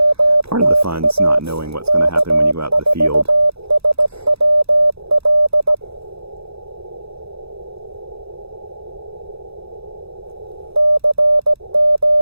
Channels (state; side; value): late; left; 0.78 ms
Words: Part of the fun is not knowing what's going to happen when you go out to the field.